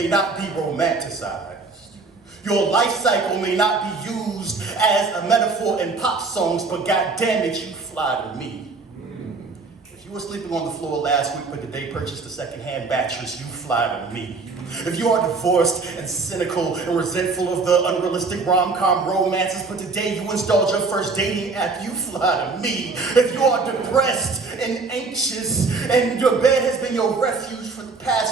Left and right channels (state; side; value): quieter; left; 4.1 dB